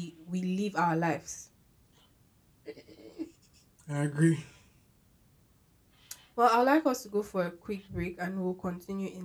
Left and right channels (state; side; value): identical; both; correlation 1.00